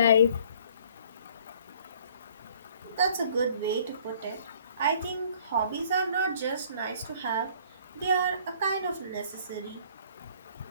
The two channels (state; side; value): inverted; both; correlation -0.56